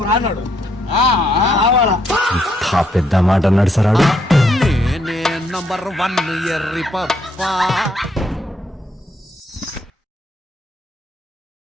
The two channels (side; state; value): both; normal; correlation 0.73